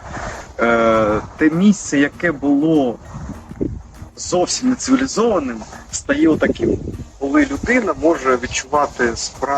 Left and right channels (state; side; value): identical; both; correlation 1.00